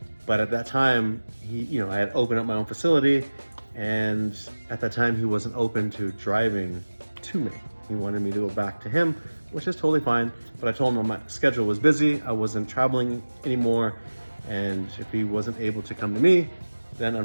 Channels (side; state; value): both; inverted; correlation -1.00